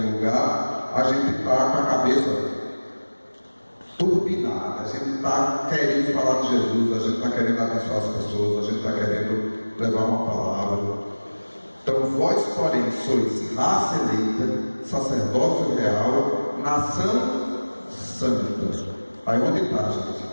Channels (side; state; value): both; inverted; correlation -1.00